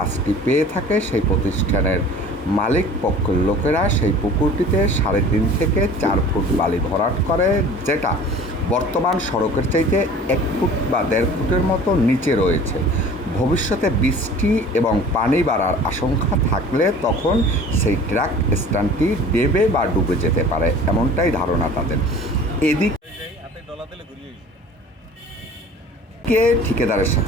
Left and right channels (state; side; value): normal; both; correlation 0.44